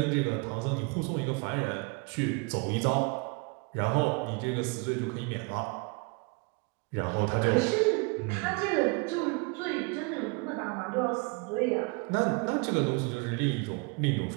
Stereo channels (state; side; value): quieter; left; 30.7 dB